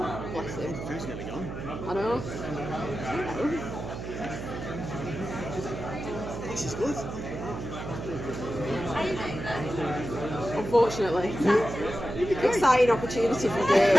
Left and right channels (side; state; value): right; noise; hum, 7 dB below the sound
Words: him. The food's nearly gone. I know. This is good. Unfortunately. Exciting opportunity for Dave.